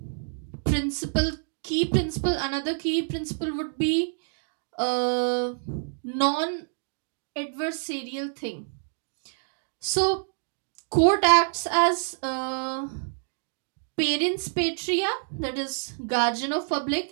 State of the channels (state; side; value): silent; left; digital silence